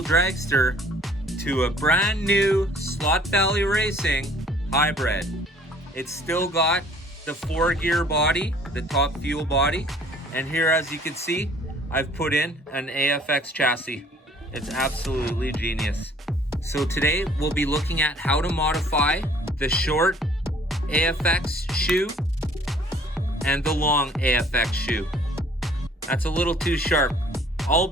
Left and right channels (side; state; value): both; normal; correlation 0.55